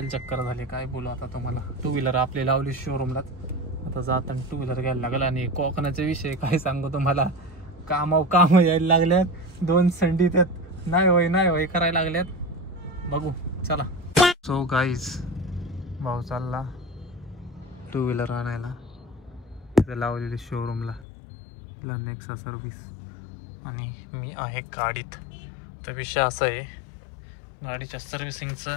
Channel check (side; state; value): right; drops out; at 21.1 s